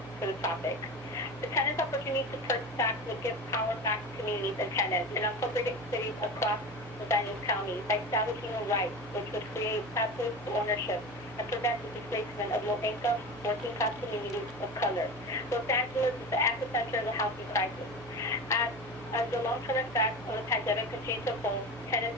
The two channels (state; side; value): noise; right; hum, 18 dB below the sound